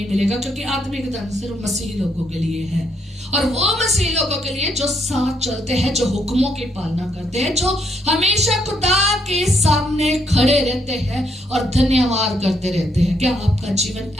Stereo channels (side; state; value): both; normal; correlation 0.73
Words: मिलेगा, क्योंकि आत्मिक धन सिर्फ मसीही लोगों के लिए है, और वो मसीही लोगों के लिए जो साथ चलते हैं, जो हुक्मों की पालना करते हैं, जो हमेशा खुदा के सामने खड़े रहते हैं और धन्यवाद करते रहते हैं। क्या आपका जीवन